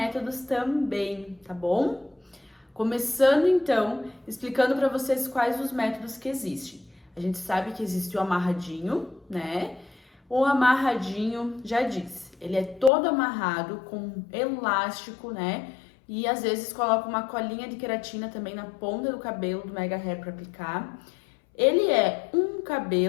também, tá bom? Começando então, explicando para vocês quais os métodos que existem. A gente sabe que existe o amarradinho, né? O amarradinho, já disse, ele é todo amarrado com elástico, né? E às vezes coloca uma colinha de queratina também na ponta do cabelo do Mega Hair para aplicar. Ele é um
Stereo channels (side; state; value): right; drops out; at 12.9 s